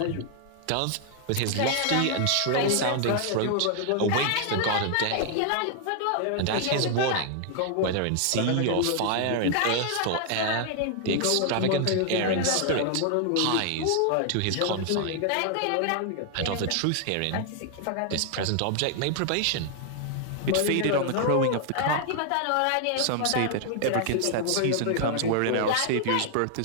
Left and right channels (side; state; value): both; different; correlation 0.00